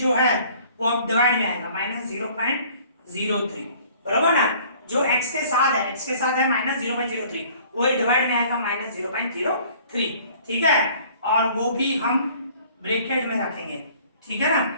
है वो अब डिवाइड में आएगा -0.03, बराबर ना। जो x के साथ है, x के साथ है -0.03, वो डिवाइड में आएगा -0.03, ठीक है। और वो भी हम ब्रैकेट में रखेंगे, ठीक है ना।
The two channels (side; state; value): both; inverted; correlation -0.54